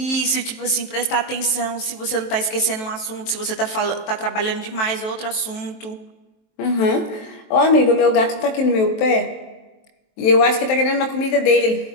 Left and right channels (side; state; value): right; late; 23 ms